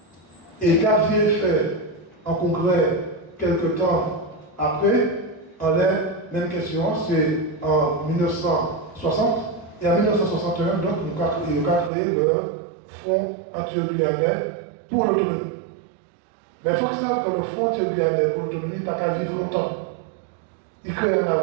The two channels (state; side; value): drops out; left; at 11.9 s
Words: Et qu'a fait un congrès quelque temps après, en la même question, c'est en 1960, et en 1961, donc, nous avons créé le Fonds antio-guyanais pour l'autonomie. Mais il faut que ça, que le Fonds antio-guyanais pour l'autonomie n'a pas vivre longtemps. Il crée en